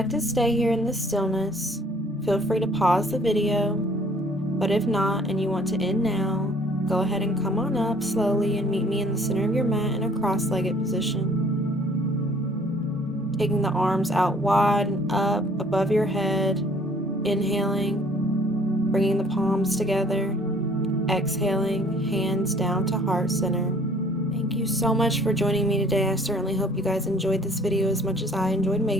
to stay here in the stillness, feel free to pause the video, but if not and you want to end now, go ahead and come on up slowly and meet me in the center of your mat in a cross-legged position. Taking the arms out wide and up above your head, inhaling, bringing the palms together, exhaling, hands down to heart center. Thank you so much for joining me today. I certainly hope you guys enjoyed this video as much as I enjoyed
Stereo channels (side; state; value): both; normal; correlation 0.57